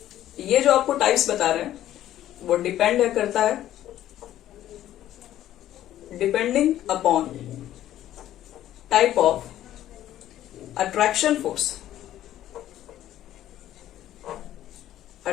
ये जो आपको टाइप्स बता रहे हैं वो डिपेंड करता है depending upon type of attraction force,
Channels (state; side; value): quieter; right; 12.8 dB